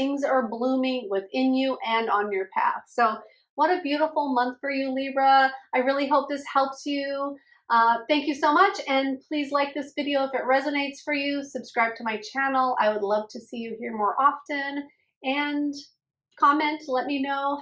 are blooming within you and on your path. So what a beautiful month for you, Libra. I really hope this helps you. Thank you so much, and please like this video if it resonates for you. Subscribe to my channel. I would love to see you here more often, and comment, let me know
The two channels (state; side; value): identical; both; correlation 1.00